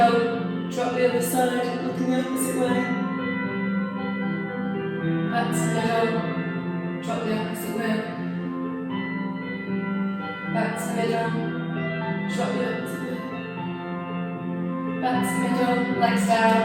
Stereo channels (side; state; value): both; identical; correlation 1.00